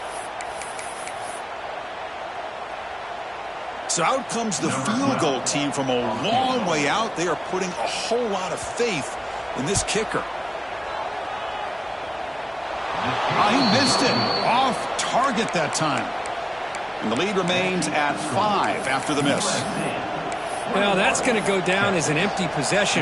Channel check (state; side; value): identical; both; correlation 1.00